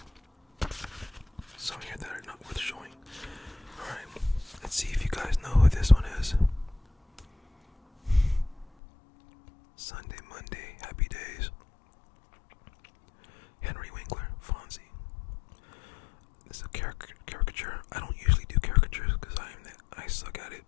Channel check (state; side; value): drops out; right; at 8.7 s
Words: Some here that are not worth showing. Alright. Let's see if you guys know who this one is. Sunday, Monday, Happy Days. Henry Winkler, Fonzie. This is a caricature. I don't usually do caricatures because I suck at it,